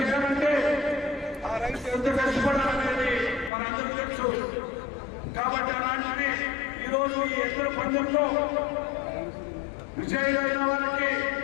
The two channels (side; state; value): right; drops out; at 3.5 s